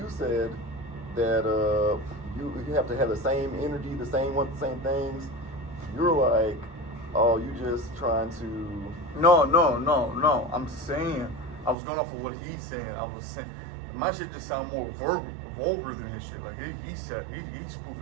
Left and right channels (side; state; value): left; drops out; at 11.8 s